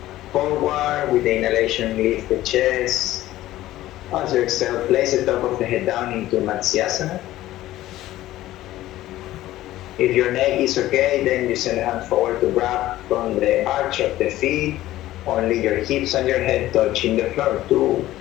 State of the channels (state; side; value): quieter; right; 15.2 dB